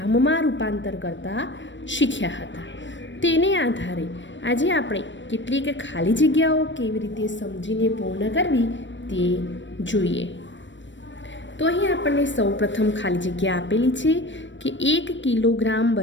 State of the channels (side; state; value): right; late; 0.54 ms